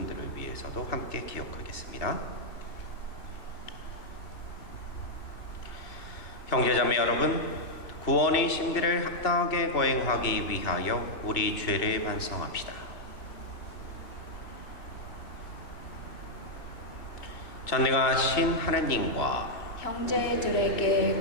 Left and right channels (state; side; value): late; right; 2.4 ms